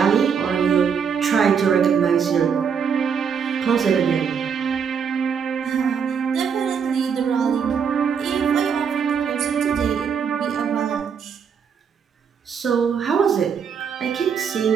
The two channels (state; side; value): quieter; left; 6.8 dB